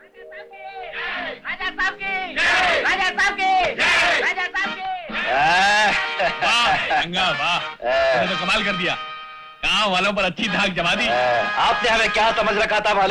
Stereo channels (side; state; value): both; identical; correlation 1.00